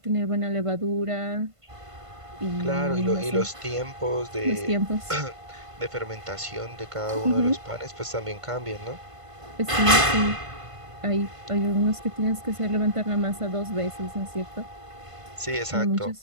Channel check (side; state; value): left; late; 1.5 ms